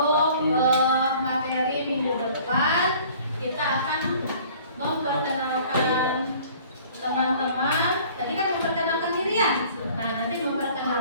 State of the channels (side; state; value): both; inverted; correlation -0.52